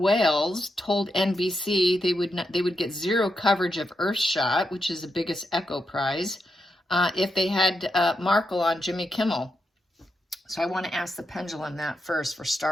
told NBC they would get zero coverage of Earthshot, which is the biggest Echo Prize, if they had Markle on Jimmy Kimmel. So I want to ask the pendulum that first for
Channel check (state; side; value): normal; both; correlation 0.85